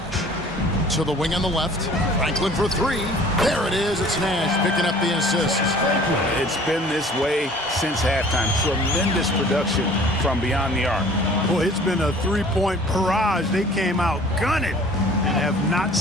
To the wing on the left. Franklin for three. There it is. It's Nash picking up the assist. It's been this way since halftime. Tremendous production from beyond the arc. Boy, it's been a three-point barrage. They came out gunning and have not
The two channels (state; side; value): normal; both; correlation 0.50